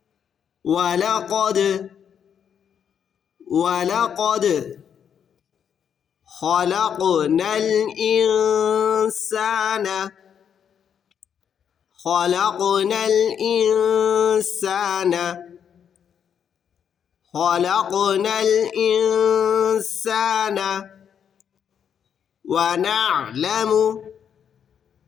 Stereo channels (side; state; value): right; quieter; 8.1 dB